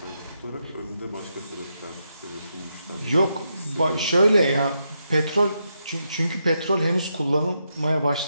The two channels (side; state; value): both; inverted; correlation -0.83